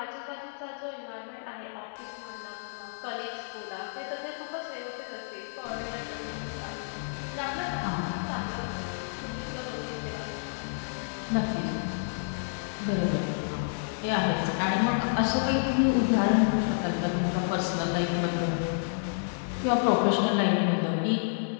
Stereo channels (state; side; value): silent; right; 58 dB below the other